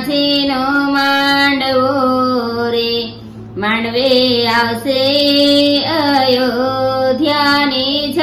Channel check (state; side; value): identical; both; correlation 1.00